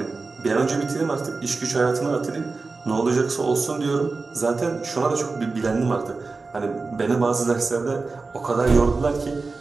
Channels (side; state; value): left; quieter; 4.0 dB